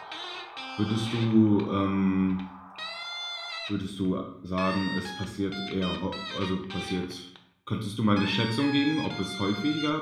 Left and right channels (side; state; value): both; identical; correlation 1.00